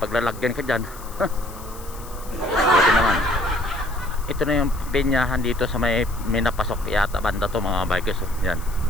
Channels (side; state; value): left; noise; hiss, 18 dB below the sound